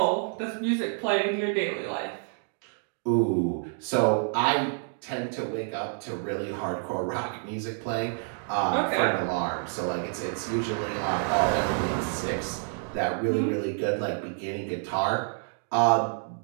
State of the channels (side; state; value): left; silent; 57 dB below the other